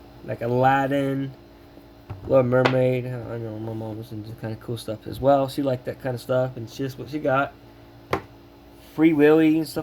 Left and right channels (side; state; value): both; identical; correlation 1.00